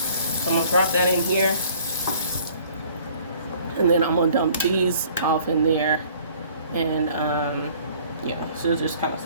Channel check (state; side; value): inverted; both; correlation -0.55